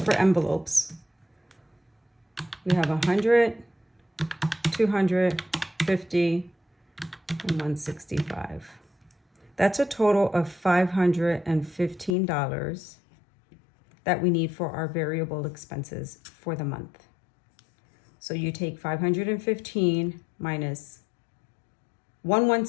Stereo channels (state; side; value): drops out; right; at 12.2 s